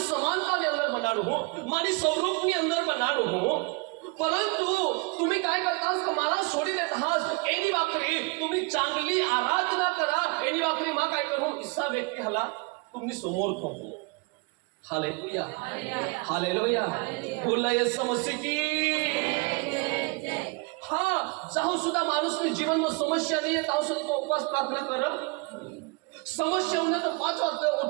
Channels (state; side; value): quieter; left; 29.3 dB